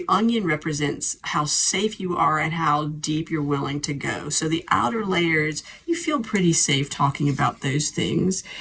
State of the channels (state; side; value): identical; both; correlation 1.00